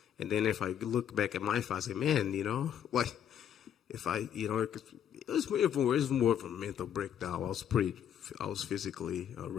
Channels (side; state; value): right; quieter; 9.4 dB